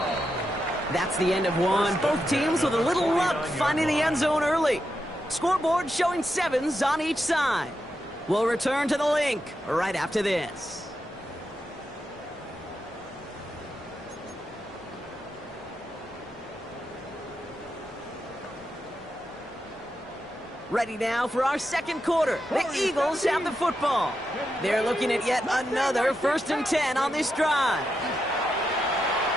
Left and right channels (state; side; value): noise; left; rumble, 30 dB below the sound